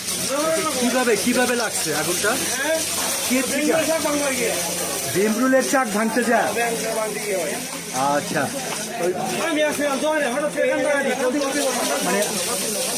কিভাবে লাগছে আগুনটা? ভীমরুলের চাক ভাঙতে যায়। আচ্ছা, মানে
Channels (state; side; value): identical; both; correlation 1.00